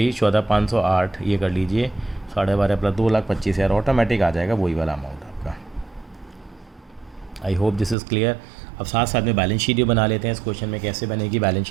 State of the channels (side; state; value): left; drops out; at 8.0 s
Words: 14,508 ये कर लीजिए, 12.5 प्लस 2,25,000 ऑटोमेटिक आ जाएगा वही वाला अमाउंट आपका। I hope this is clear. अब साथ साथ में बैलेंस शीट भी बना लेते हैं। इस क्वेश्चन में कैसे बनेगी बैलेंस